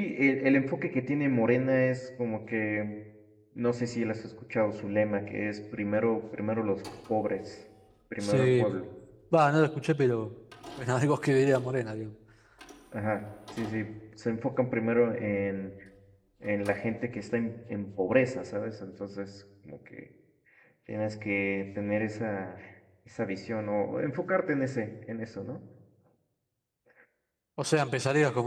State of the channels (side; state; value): both; identical; correlation 1.00